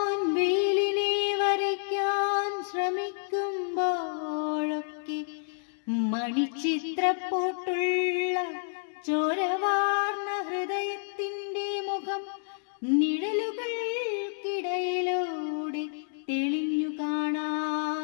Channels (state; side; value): silent; right; 58 dB below the other